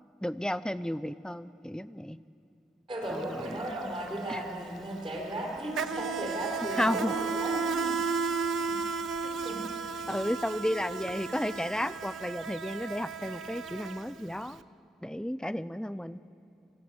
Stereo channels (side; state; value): both; normal; correlation 0.74